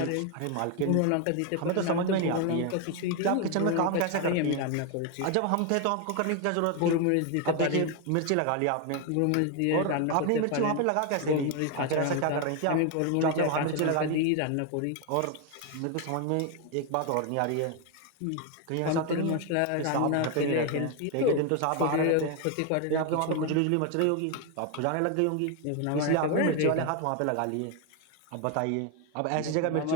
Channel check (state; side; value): different; both; correlation 0.01